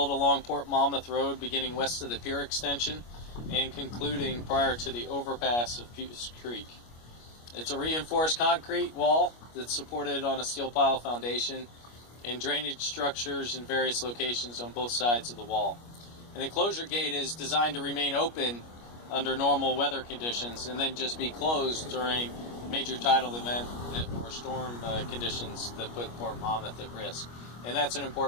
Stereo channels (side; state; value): right; late; 25 ms